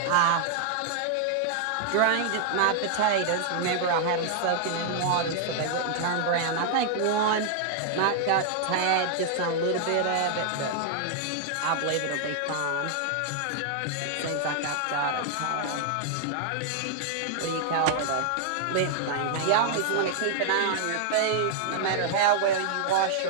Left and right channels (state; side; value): different; both; correlation -0.01